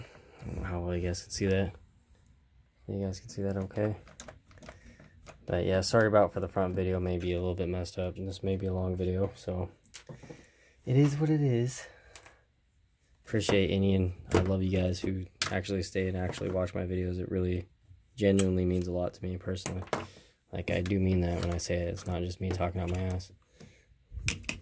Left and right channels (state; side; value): identical; both; correlation 1.00